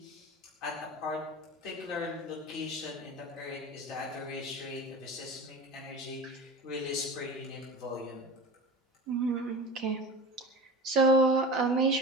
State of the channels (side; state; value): both; normal; correlation 0.33